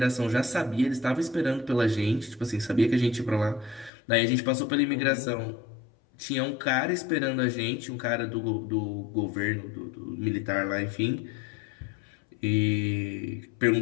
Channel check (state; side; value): drops out; right; at 3.9 s